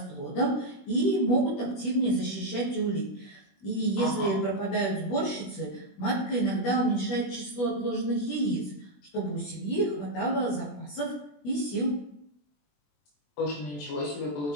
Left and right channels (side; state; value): right; late; 20 ms